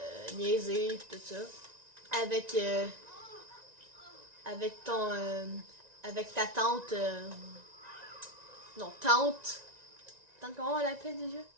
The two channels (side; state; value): left; late; 1.9 ms